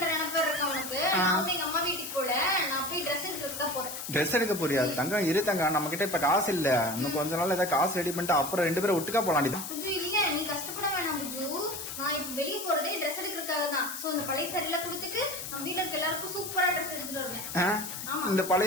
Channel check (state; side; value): noise; left; hiss, 7 dB below the sound